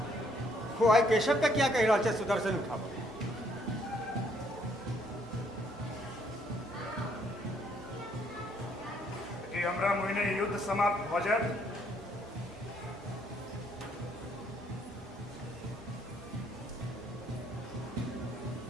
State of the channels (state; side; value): normal; both; correlation 0.68